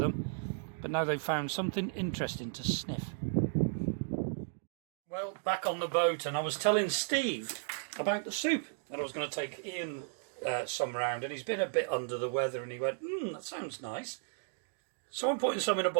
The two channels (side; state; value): left; silent; digital silence